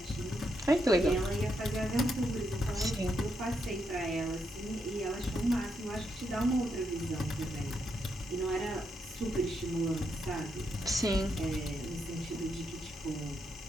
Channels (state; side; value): normal; both; correlation 0.81